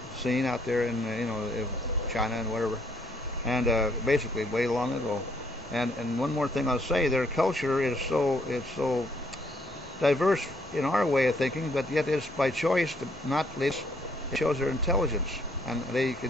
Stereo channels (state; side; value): normal; both; correlation 0.68